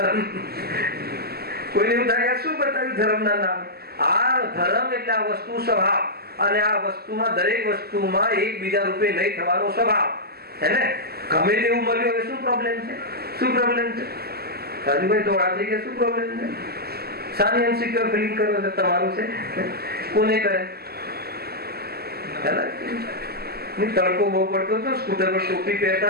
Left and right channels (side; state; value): left; late; 0.46 ms